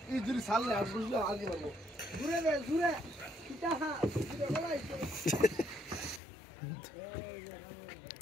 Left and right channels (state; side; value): drops out; right; at 6.2 s